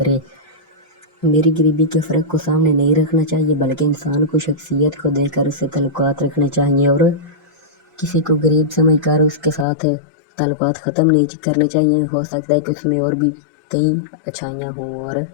मेरी गरीबी के फ़र्क को सामने नहीं रखना चाहिए बल्कि इंसान को शख्सियत को देखकर उससे ताल्लुकात रखने चाहिए और किसी को गरीब समझकर उसके साथ ताल्लुकात ख़त्म नहीं करने चाहिए। हो सकता है कि उसमें और भी कई अच्छाइयाँ हों और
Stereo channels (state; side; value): drops out; right; at 9.7 s